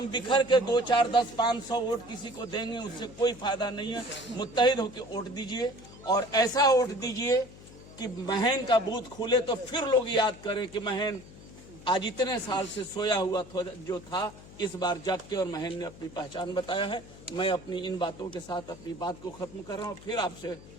बिखर के 2, 4, 10, 500 वोट किसी को देंगे, उससे कोई फायदा नहीं है। मुत्तहिद होकर वोट दीजिए और ऐसा वोट दीजिए कि महन का बूथ खुले तो फिर लोग याद करें कि महन आज इतने साल से सोया हुआ जो था, इस बार जाग के और महन ने अपनी पहचान बताया है। मैं अपनी इन बातों के साथ अपनी बात को खत्म कर रहा हूँ। फिर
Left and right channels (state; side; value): noise; left; hum, 19 dB below the sound